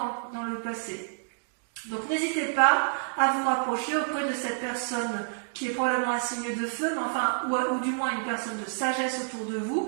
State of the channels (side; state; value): left; silent; digital silence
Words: dans le passé. Donc n'hésitez pas à vous rapprocher auprès de cette personne qui est probablement un signe de feu, mais enfin, ou du moins une personne de sagesse autour de vous,